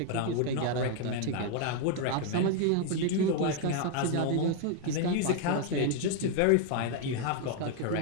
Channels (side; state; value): both; different; correlation 0.00